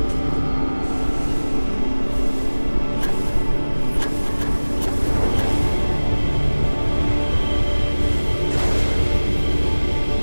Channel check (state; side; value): inverted; both; correlation -1.00